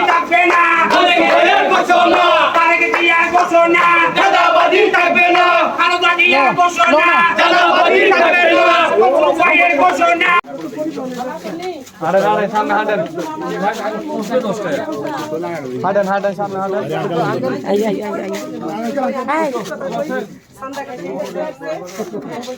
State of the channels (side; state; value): both; identical; correlation 1.00